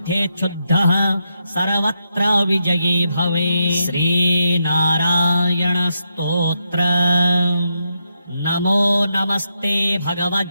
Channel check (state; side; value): inverted; both; correlation -0.83